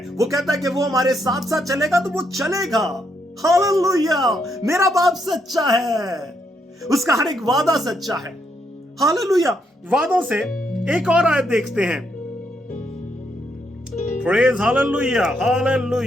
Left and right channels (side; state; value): both; normal; correlation 0.77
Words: वो कहता है कि वो हमारे साथ साथ चलेगा तो वो चलेगा। हालेलुया! मेरा बाप सच्चा है, उसका हर एक वादा सच्चा है। हालेलुया! वादों से एक और आयत देखते हैं। Praise hallelujah,